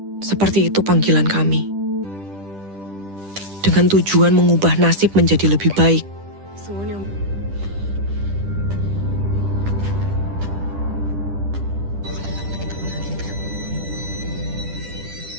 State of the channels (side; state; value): left; late; 10 ms